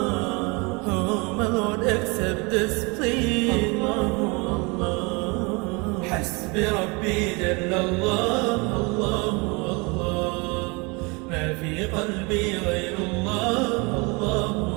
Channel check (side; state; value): left; quieter; 28.5 dB